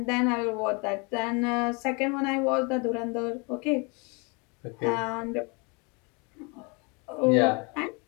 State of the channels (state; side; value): quieter; right; 31.0 dB